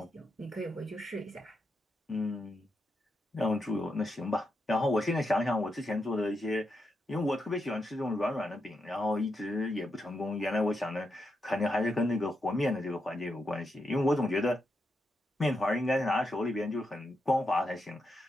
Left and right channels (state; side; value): normal; both; correlation 0.84